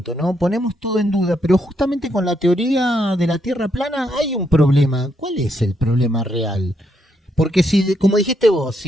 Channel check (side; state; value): both; normal; correlation 0.77